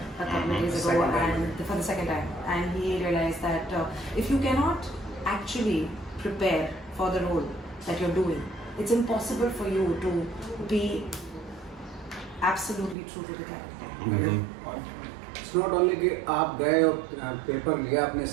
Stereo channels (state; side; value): drops out; left; at 13.0 s